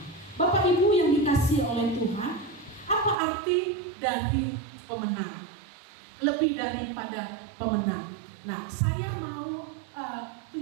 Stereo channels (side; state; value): left; drops out; at 3.2 s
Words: Bapak Ibu yang dikasihi oleh Tuhan, apa arti dari pemenang? Lebih daripada pemenang. Nah, saya mau